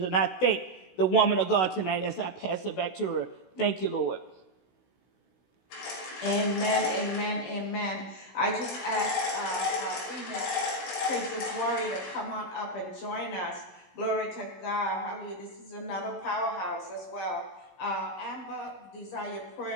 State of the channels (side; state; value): right; late; 16 ms